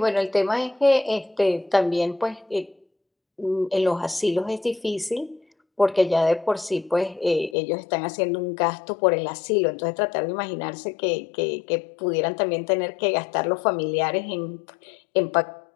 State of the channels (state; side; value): drops out; right; at 7.6 s